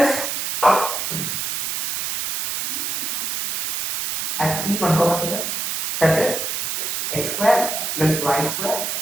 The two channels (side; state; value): right; noise; hiss, 2 dB below the sound